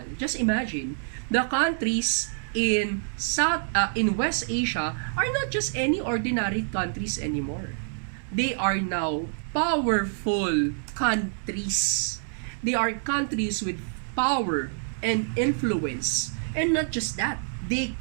Just imagine, the countries in West Asia are not just any ordinary countries anymore. They are now powerful countries. They are countries with power and influence. And not just that, they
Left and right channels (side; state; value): left; silent; digital silence